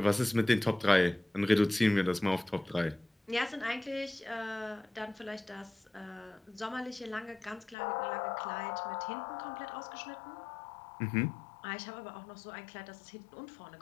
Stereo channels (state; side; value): drops out; right; at 7.8 s